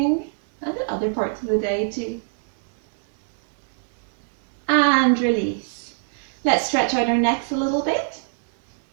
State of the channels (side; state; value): left; silent; 63 dB below the other